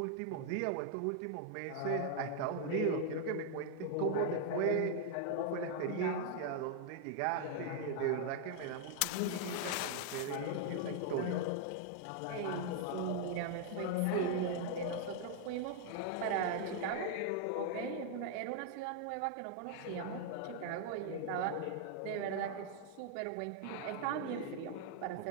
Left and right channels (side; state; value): both; different; correlation 0.00